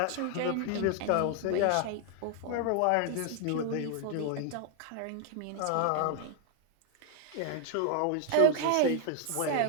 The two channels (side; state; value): both; different; correlation 0.00